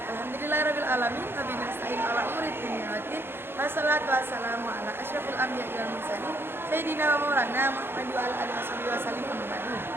Alhamdulillahirabbil alamin wa bihi nasta'in ala umuri dunya waddin. Wassalatu wassalamu ala asyrafil anbiya'i wal mursalin sayyidina wa maulana Muhammad wa ala alihi wasallim Muhammadu.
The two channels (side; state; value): left; late; 0.11 ms